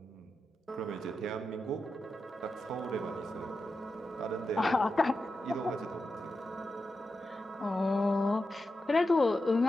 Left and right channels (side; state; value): both; normal; correlation 0.90